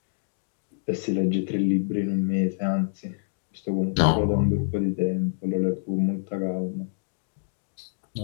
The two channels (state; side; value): silent; right; digital silence